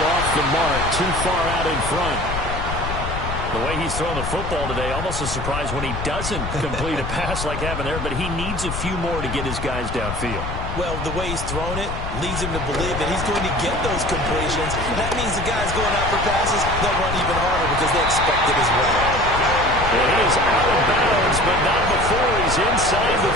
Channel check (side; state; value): left; noise; rumble, 5 dB below the sound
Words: off the mark, too far out in front. The way he's throwing the football today, almost a surprise when he doesn't complete a pass like happened there, but he needs a few more to get his guys downfield. Well, the way he's thrown it leads him to believe that he's going to get those completions. That means the guys going out for passes, they'll run even harder because they expect it as well. And he is out of bounds, but not before he's inside the